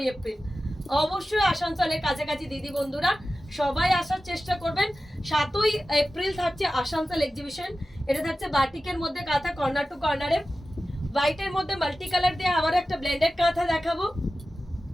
এপ্রিল। অবশ্যই আসানসোলের কাছাকাছি দিদি বন্ধুরা সবাই আসার চেষ্টা করবেন। 7ই এপ্রিল থাকছে আসানসোল এক্সিবিশন। এটা থাকছে বাটিকের মধ্যে কাঁথা, কর্নার টু কর্নারে, হোয়াইটের মধ্যে মাল্টি কালার দিয়ে আবার একটা ব্লেন্ডেড কাঁথা দেখাবো।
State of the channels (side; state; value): both; normal; correlation 0.94